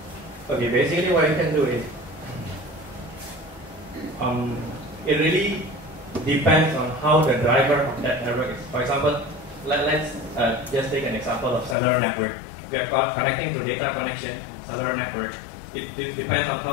Okay, basically what you can do is, it really depends on how the driver of that network is. For example, let's just take an example of cellular network. We are connecting to data connection, cellular network. It depends on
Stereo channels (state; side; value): drops out; right; at 11.8 s